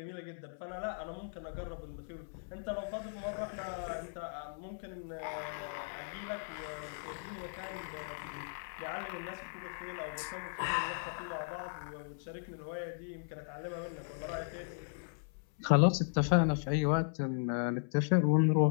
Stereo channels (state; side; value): silent; right; 53 dB below the other